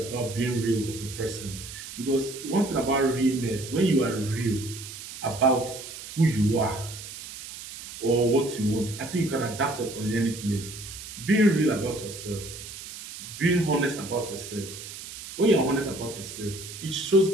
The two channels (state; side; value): noise; right; hiss, 12 dB below the sound